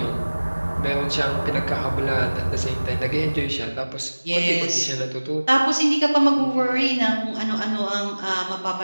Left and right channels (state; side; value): inverted; both; correlation -1.00